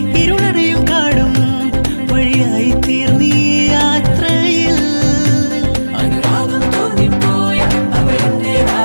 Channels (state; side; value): inverted; both; correlation -1.00